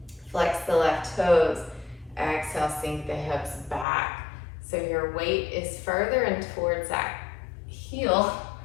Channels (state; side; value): drops out; right; at 3.9 s